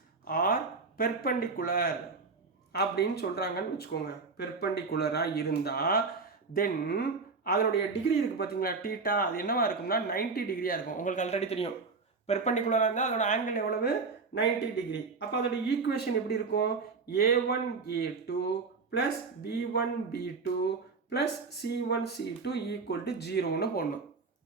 ஆர் பெர்பெண்டிகுலர் அப்படின்னு சொல்கிறாங்கன்னு வச்சுக்கோங்க. பெர்பெண்டிகுலராக இருந்தால் தென் அதனுடைய டிகிரி இருக்குது பார்த்தீங்களா? டீட்டா அது என்னவா இருக்கும்னா 90 டிகிரியாக இருக்கும். உங்களுக்கு ஆல்ரெடி தெரியும் பெர்பெண்டிகுலராக இருந்தால் அதோட ஆங்கிள் எவ்வளவு 90 டிகிரி. அப்போ அதோட ஈக்குவேஷன் எப்படி இருக்கும்? a1 a2 plus b1 b2 plus c1 c2 equal to 0ன்னு போடணும்.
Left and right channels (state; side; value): quieter; left; 4.5 dB